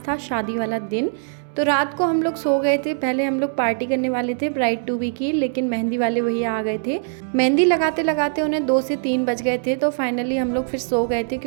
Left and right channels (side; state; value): left; silent; 64 dB below the other